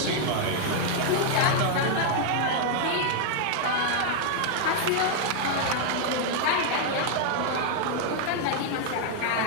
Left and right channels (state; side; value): different; both; correlation 0.00